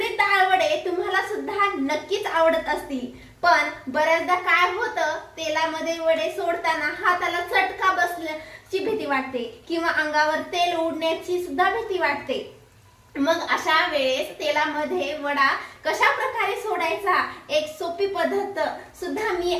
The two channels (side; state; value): both; identical; correlation 1.00